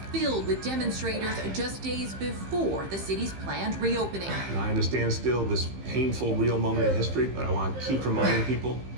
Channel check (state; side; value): late; left; 15 ms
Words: filled with demonstrators just days before the city's planned reopening. And I understand still this painful, real moment in history, but I want to keep reminding people